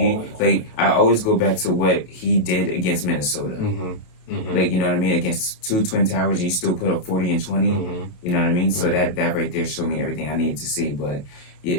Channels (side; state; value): right; late; 28 ms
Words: I always go back to what he did against Minnesota. Mm-hmm. Mm-hmm. You know what I mean? Against 2 twin towers, he still put up 40 and 20. Mm-hmm. You know what I mean? So that right there showed me everything I needed to see. But